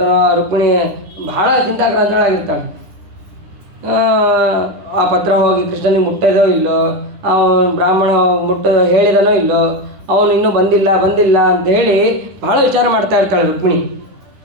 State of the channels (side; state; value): left; late; 10 ms